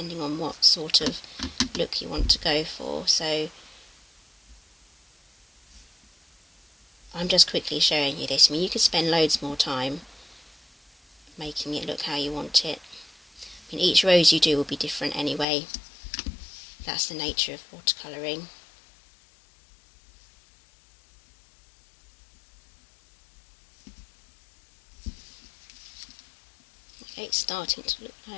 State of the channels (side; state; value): right; drops out; at 15.5 s